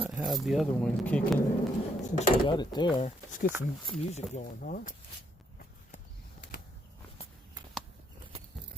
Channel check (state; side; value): normal; both; correlation 0.73